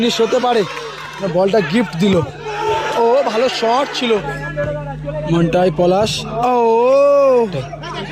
হতে পারে, বলটা গিফট দিল। ও ভালো শট ছিল মন্টাই। পলাশ, ও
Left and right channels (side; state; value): both; identical; correlation 1.00